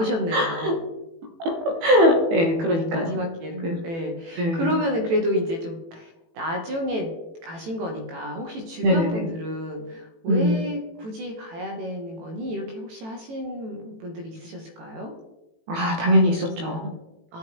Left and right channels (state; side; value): late; left; 18 ms